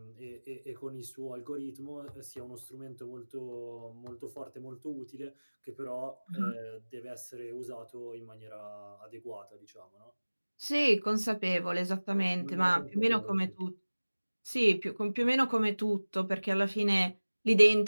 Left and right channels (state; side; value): inverted; both; correlation -1.00